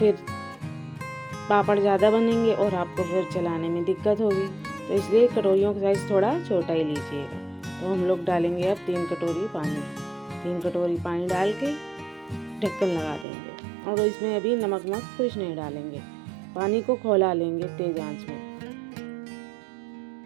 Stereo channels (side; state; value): left; drops out; at 13.2 s